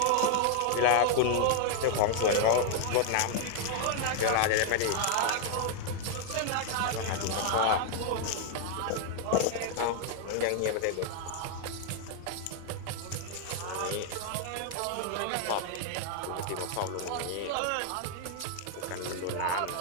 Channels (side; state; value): both; different; correlation 0.00